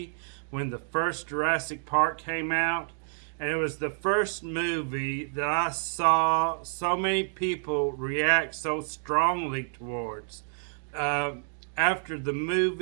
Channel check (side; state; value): left; silent; digital silence